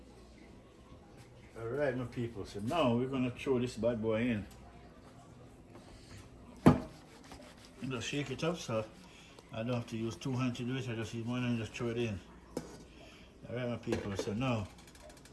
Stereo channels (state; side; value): identical; both; correlation 1.00